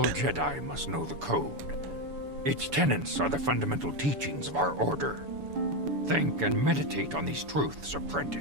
Jedi must know the Code. Its tenets are the fundamental teachings of our order. Think and meditate on these truths,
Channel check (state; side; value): late; left; 7.0 ms